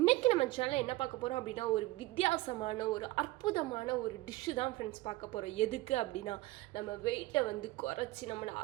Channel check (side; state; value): left; quieter; 19.1 dB